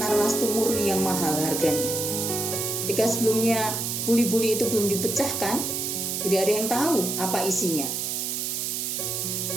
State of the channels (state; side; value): noise; right; hiss, 2 dB below the sound